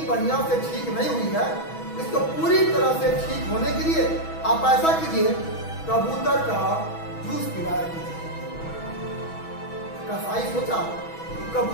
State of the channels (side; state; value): right; late; 6.2 ms